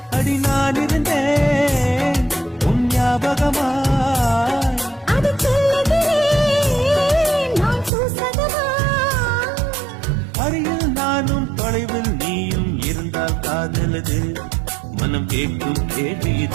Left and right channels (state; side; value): drops out; left; at 7.9 s